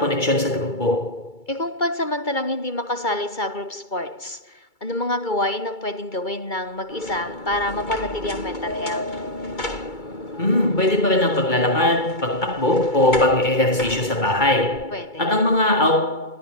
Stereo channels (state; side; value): late; right; 2.3 ms